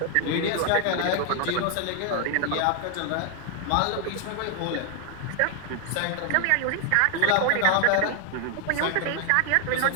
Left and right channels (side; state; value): both; different; correlation 0.00